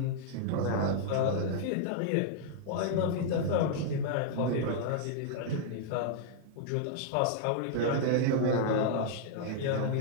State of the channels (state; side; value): different; both; correlation -0.01